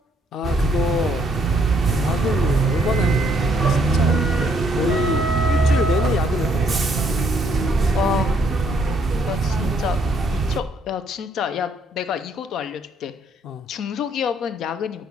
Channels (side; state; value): both; normal; correlation 0.68